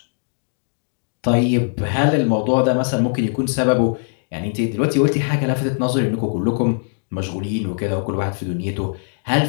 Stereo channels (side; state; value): right; silent; digital silence